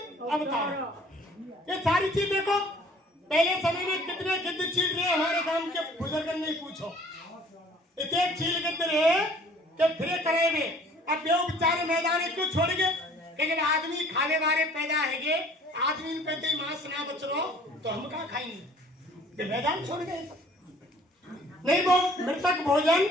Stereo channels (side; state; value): both; normal; correlation 0.53